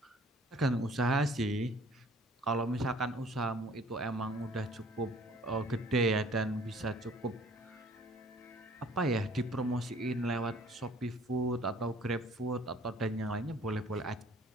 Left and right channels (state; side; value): normal; both; correlation 0.54